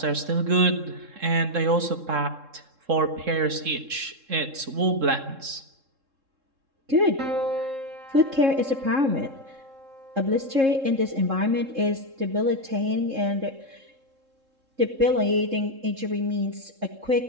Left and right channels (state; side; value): late; left; 3.7 ms